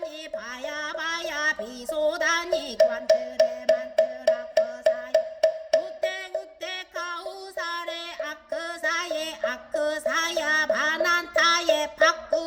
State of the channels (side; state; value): both; identical; correlation 1.00